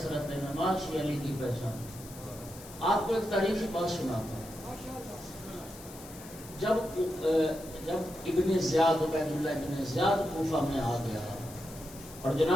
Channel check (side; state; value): left; noise; hiss, 17 dB below the sound